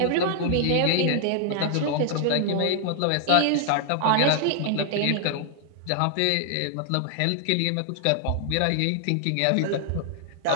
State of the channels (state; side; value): different; both; correlation 0.00